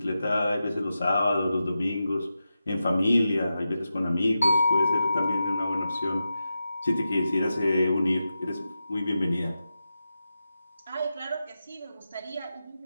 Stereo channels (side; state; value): both; inverted; correlation -0.91